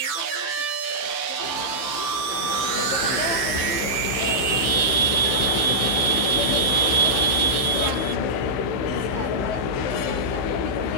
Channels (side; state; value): right; late; 15 ms